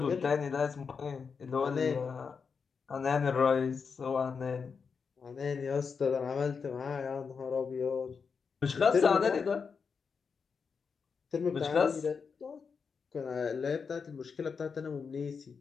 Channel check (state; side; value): quieter; right; 5.7 dB